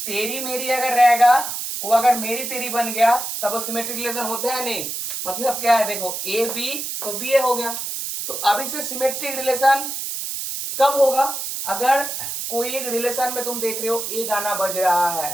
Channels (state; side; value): noise; right; hiss, 5 dB below the sound